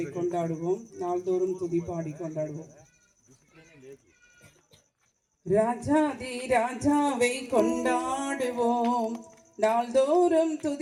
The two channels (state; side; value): identical; both; correlation 1.00